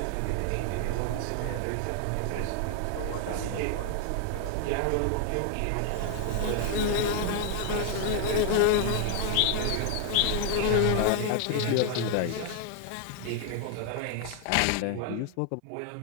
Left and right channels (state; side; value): different; both; correlation 0.00